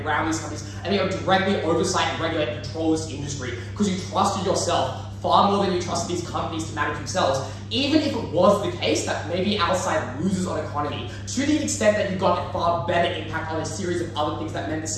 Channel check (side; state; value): both; identical; correlation 1.00